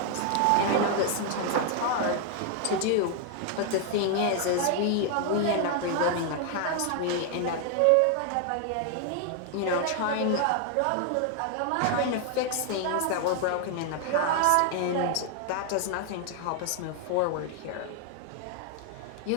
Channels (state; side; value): different; both; correlation 0.00